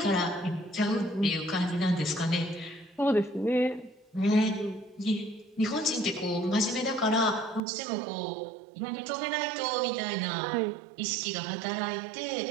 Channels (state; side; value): drops out; left; at 7.6 s